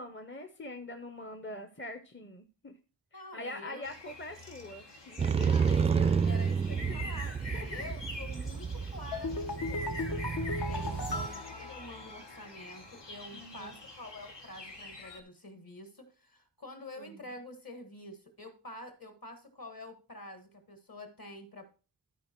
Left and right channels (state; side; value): quieter; left; 3.7 dB